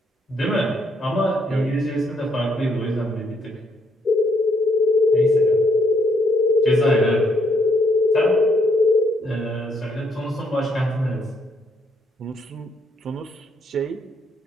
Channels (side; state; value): both; normal; correlation 0.72